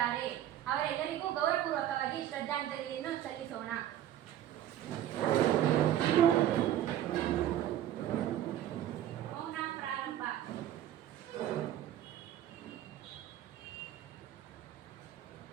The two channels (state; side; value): quieter; left; 11.9 dB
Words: ಅವರೆಲ್ಲರಿಗೂ ಗೌರವಪೂರ್ವಕವಾಗಿ ಶ್ರದ್ಧಾಂಜಲಿಯನ್ನು ಸಲ್ಲಿಸೋಣ. ಮೌನ ಪ್ರಾರಂಭ.